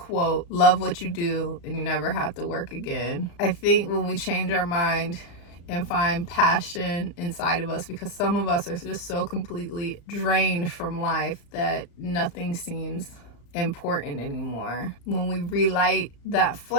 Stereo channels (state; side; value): late; right; 35 ms